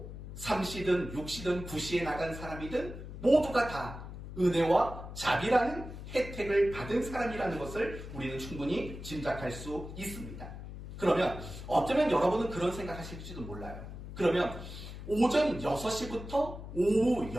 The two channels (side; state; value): left; noise; hum, 11 dB below the sound